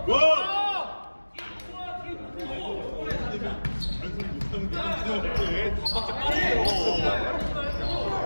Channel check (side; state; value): both; inverted; correlation -1.00